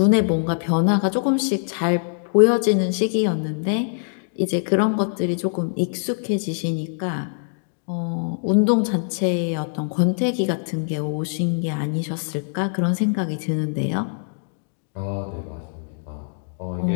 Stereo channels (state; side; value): silent; right; digital silence